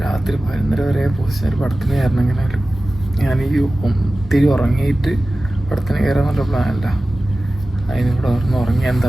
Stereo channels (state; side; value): normal; both; correlation 0.96